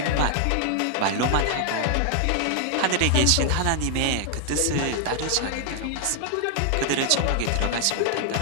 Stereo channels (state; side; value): different; both; correlation 0.00